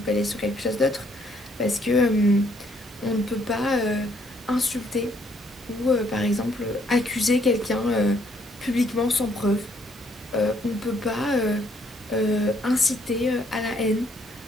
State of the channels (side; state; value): both; normal; correlation 0.68